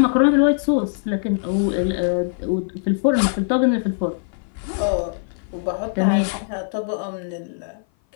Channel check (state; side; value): silent; right; 57 dB below the other